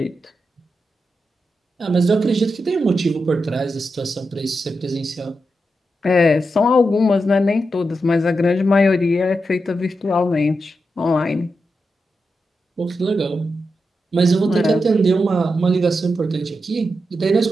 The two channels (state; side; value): normal; both; correlation 0.87